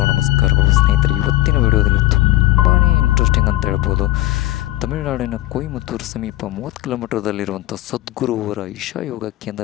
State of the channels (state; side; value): quieter; right; 15.8 dB